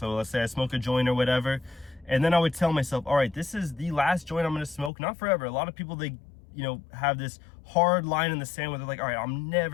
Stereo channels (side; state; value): right; drops out; at 4.9 s